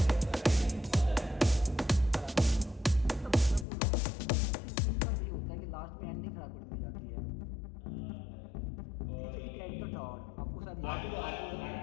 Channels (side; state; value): right; drops out; at 3.7 s